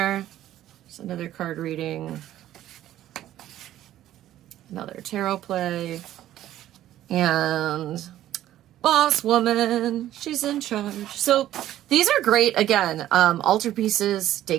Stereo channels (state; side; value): quieter; left; 13.0 dB